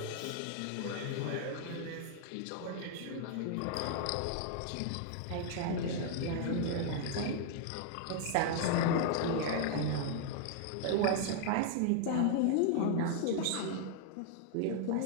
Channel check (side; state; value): both; different; correlation 0.00